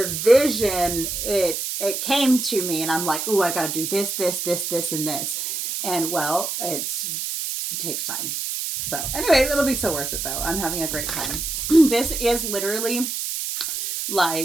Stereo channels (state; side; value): noise; right; hiss, 3 dB below the sound